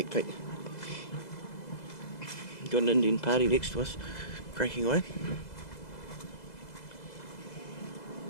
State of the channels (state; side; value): late; right; 2.0 ms